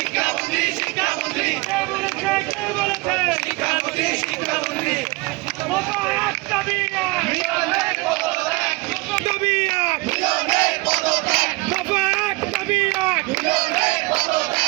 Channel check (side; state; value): left; quieter; 25.0 dB